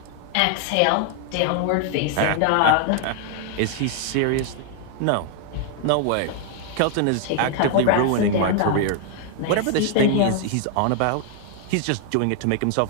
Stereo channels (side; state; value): both; different; correlation 0.00